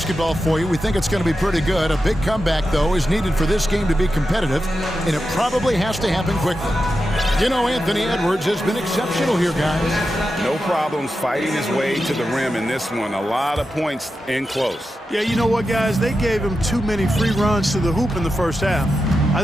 for you. We think it's going to be pretty good. A big comeback, though, is needed for this game to be competitive, and it probably has to happen quickly. You know, Anthony Edwards has been exceptional here, guys. No problems fighting his way to the rim in this one. A lot of points in close. Yeah, you know what, guys? They gave him too many free runs to the hoop in the first half. I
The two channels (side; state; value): both; normal; correlation 0.90